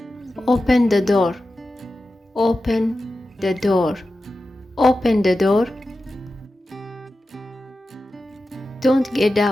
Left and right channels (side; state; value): both; normal; correlation 0.93